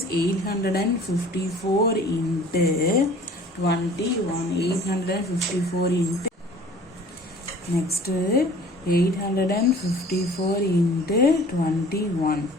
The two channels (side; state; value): both; normal; correlation 0.48